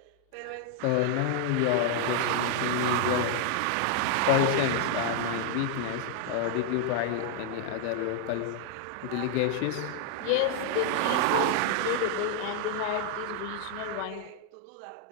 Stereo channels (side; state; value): both; different; correlation 0.00